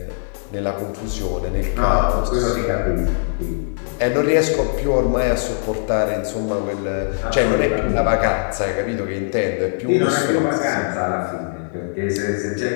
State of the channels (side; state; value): right; silent; digital silence